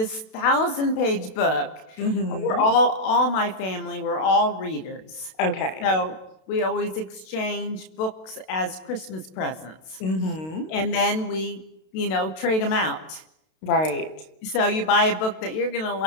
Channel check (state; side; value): late; right; 32 ms